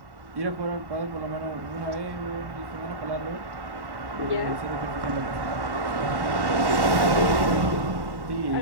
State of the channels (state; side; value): late; left; 1.1 ms